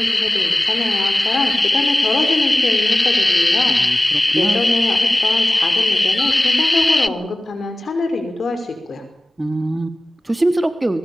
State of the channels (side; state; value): both; normal; correlation 0.97